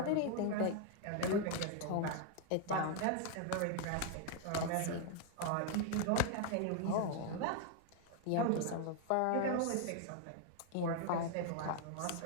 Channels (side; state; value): both; different; correlation 0.00